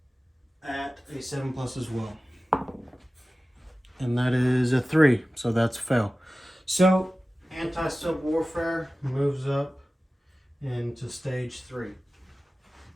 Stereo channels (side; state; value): both; normal; correlation 0.96